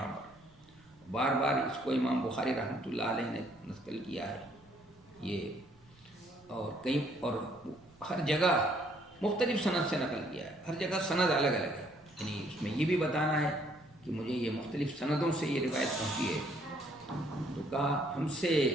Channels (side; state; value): right; noise; rumble, 28 dB below the sound